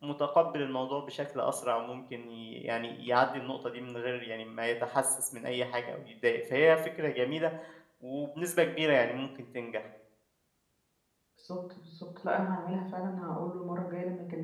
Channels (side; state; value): both; identical; correlation 1.00